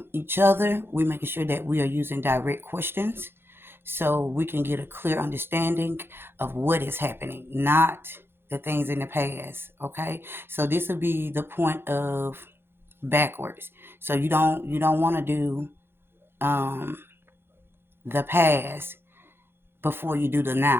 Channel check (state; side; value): late; left; 0.11 ms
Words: each other, we're making sure that we are using direct questions so we can get a clear understanding of what is happening, not the things in the past. Okay? So this will be the point of backwards. So you don't want to do um, the past before you do the